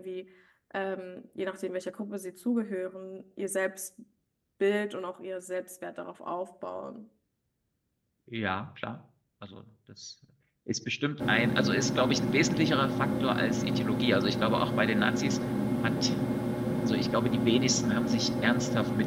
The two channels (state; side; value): identical; both; correlation 1.00